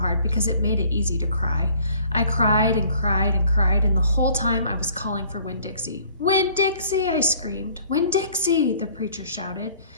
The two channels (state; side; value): inverted; both; correlation -0.56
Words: because it made it easy to cry. I cried and cried and cried, and the whole time I was calling for Winn-Dixie. "Winn-Dixie!" I screamed. "Winn-Dixie!" the preacher shouted.